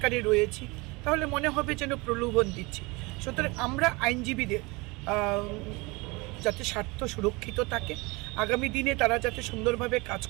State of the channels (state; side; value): quieter; left; 25.4 dB